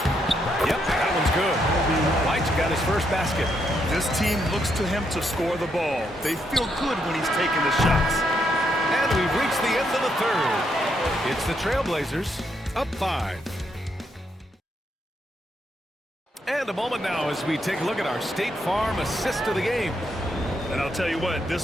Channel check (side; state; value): both; normal; correlation 0.77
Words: Yep, that one's good. White's got his first basket. This team looks to him to score the ball. They feel good when he's taking the shots. And we've reached the end of the third. It's the Trailblazers up 5. And a moment now as we take a look at our State Farm assist of the game. And I'll tell you what, this